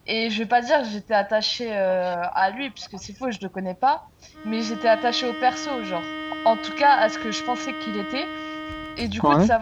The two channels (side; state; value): both; identical; correlation 1.00